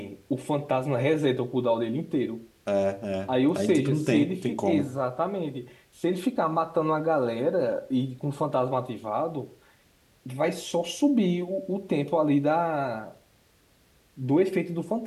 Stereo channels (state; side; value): identical; both; correlation 1.00